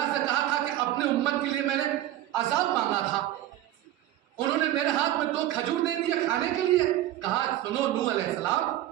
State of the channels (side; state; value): left; quieter; 13.6 dB